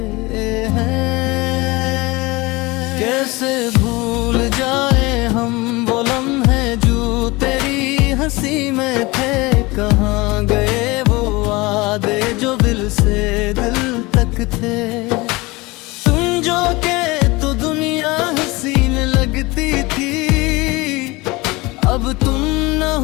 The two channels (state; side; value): quieter; right; 22.9 dB